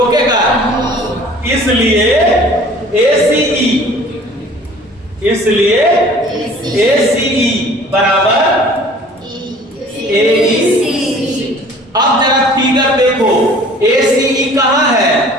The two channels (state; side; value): normal; both; correlation 0.49